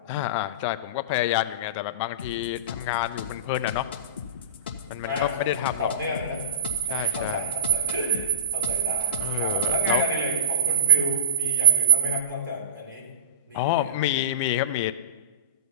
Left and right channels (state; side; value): inverted; both; correlation -0.39